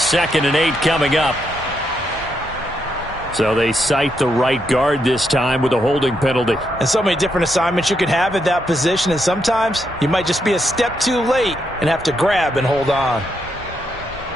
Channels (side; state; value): both; normal; correlation 0.80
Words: and 8 coming up. So they cite the right guard this time with a holding penalty. And so many different assignments you can have at that position, and sometimes you might just be a step too late and have to grab and hold on.